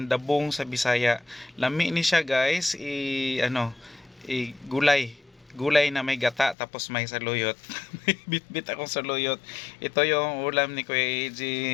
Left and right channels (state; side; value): drops out; right; at 6.6 s